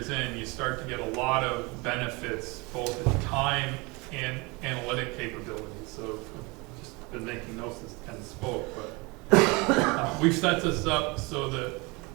in, you start to get a lot of benefits, both in time and analytic capabilities. So I've just been making notes as Ken spoke, but we've set this up so that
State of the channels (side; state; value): left; quieter; 26.5 dB